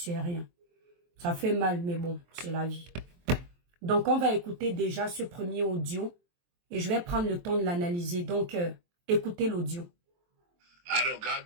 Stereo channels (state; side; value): late; left; 23 ms